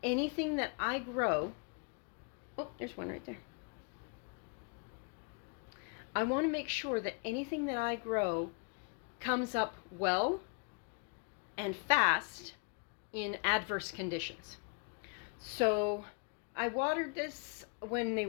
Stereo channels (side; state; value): right; quieter; 36.0 dB